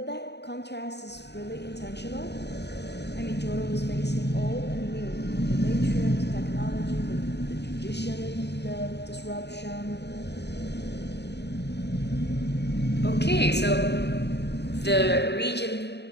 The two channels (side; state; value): right; late; 0.49 ms